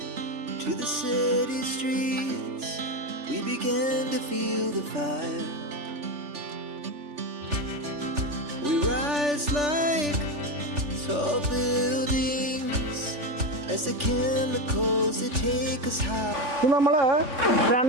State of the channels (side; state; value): left; late; 3.4 ms